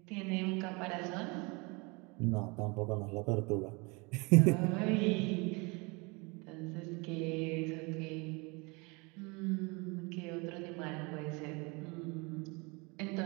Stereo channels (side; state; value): left; quieter; 28.2 dB